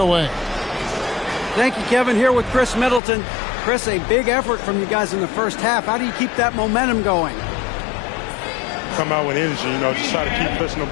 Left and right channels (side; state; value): right; drops out; at 3.0 s